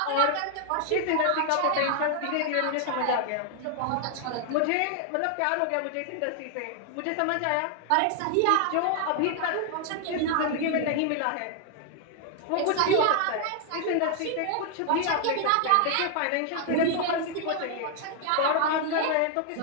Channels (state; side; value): different; both; correlation 0.00